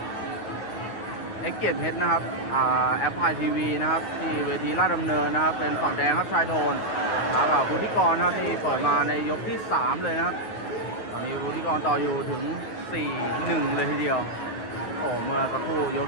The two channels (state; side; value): late; right; 9.4 ms